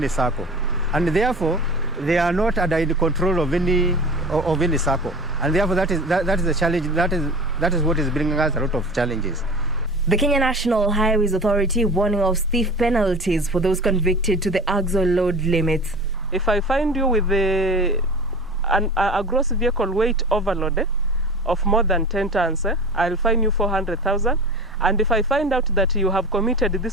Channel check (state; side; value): normal; both; correlation 0.36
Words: circle. And therefore, they are not under the control of any circle. And therefore, that is the challenge, that is what is bringing us a lot of challenges. The Kenya National Highways Authority warning of stiff penalties for those convicted to the axle load limits. If I find you with a gross vehicle weight overload of more than 10 tons, I'll fine you 400,000. And if I find out that you have committed